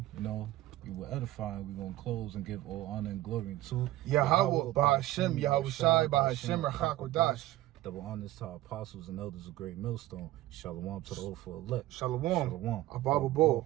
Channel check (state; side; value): quieter; left; 15.8 dB